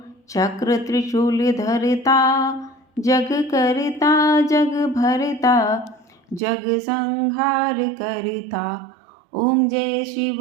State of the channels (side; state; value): left; drops out; at 6.4 s